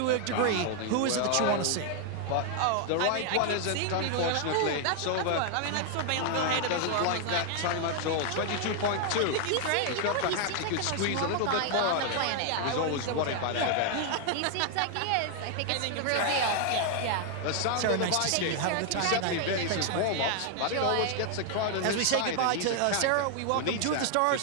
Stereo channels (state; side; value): different; both; correlation 0.00